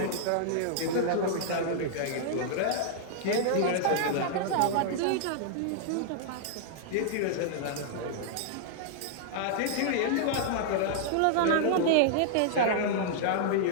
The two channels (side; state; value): both; different; correlation -0.01